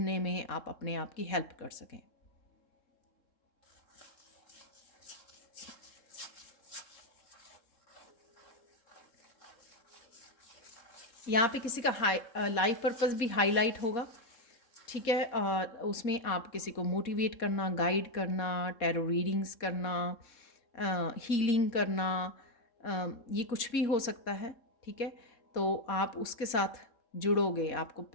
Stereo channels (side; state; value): right; late; 3.7 ms